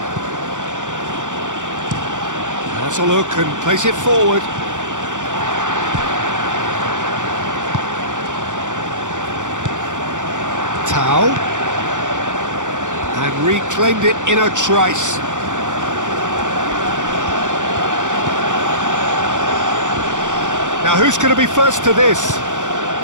Has a look and plays it forward. Tau. And reclaimed it in a trice. Now who's going to be first to this?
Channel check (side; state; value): left; late; 0.86 ms